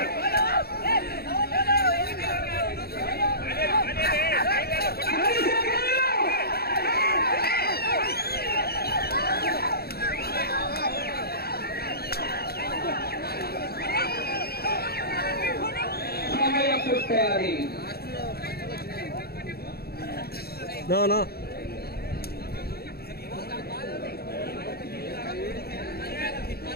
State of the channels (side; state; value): right; late; 0.46 ms